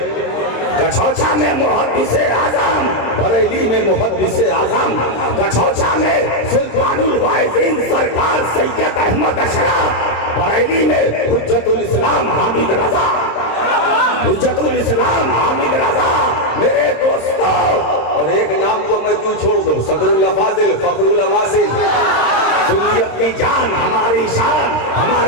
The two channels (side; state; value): right; late; 26 ms